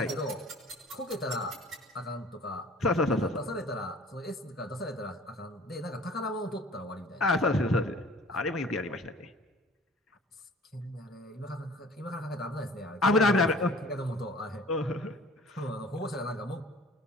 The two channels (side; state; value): both; normal; correlation 0.49